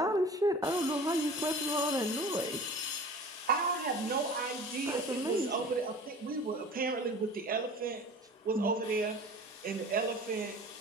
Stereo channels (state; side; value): normal; both; correlation 0.41